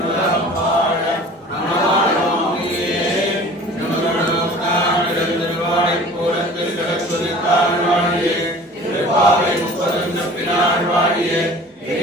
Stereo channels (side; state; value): both; normal; correlation 0.44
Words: வாழ திருவாய்ப்பூரத்தில் கிடக்குதித்தாள் வாழியே திருப்பாவை முப்பதும் தப்பினாள் வாழியே